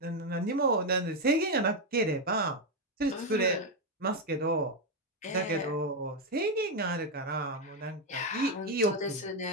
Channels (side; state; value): both; normal; correlation 0.05